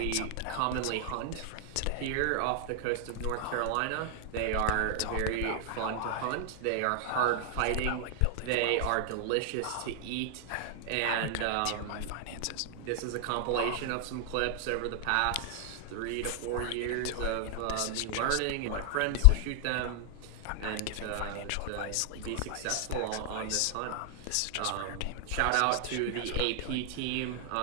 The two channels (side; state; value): both; different; correlation 0.00